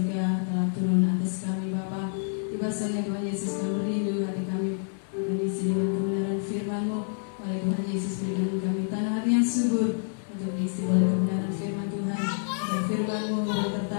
telah turun atas kami Bapa. Bahasanya Tuhan Yesus kami merindu hati kami akan diisi dengan kebenaran firman-Mu. Wahai Tuhan Yesus, berikan kami tanah hati yang subur untuk diisi oleh kebenaran firman Tuhan. Dan firman-Mu boleh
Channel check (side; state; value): right; silent; digital silence